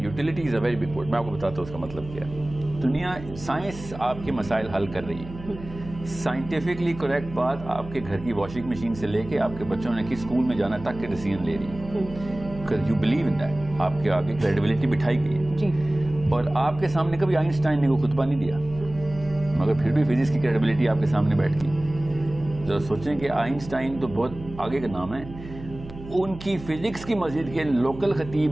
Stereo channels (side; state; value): right; noise; hum, 14 dB below the sound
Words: utility is a very big word. میں آپ کو بتاتا ہوں اس کا مطلب کیا ہے۔ دنیا سائنس آپ کے مسائل حل کر رہی ہے، سائنٹیفکلی کریکٹ بات آپ کے گھر کی واشنگ مشین سے لے کے آپ کے بچوں نے کس اسکول میں جانا تک کے ڈیسیژن لے رہی ہے، because you believe in that۔ آپ کے آگے کریڈیبلٹی بٹھائی گئی ہے جی، اور آپ کے سامنے کبھی آئنسٹائن نے کوئی خطبہ نہیں دیا، مگر پھر بھی فزکس کی کریڈیبلٹی آپ کے سامنے بیٹھ گئی۔ ذرا سوچیں کہ آئنسٹائن تو بہت آگے کا نام ہے، ان کی فزکس کی مسجد کے لوکل